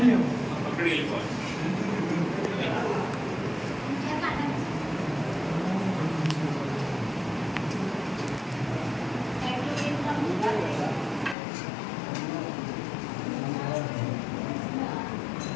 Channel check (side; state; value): right; drops out; at 11.4 s